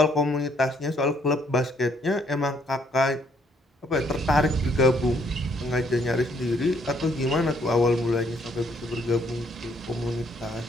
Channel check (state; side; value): normal; both; correlation 0.67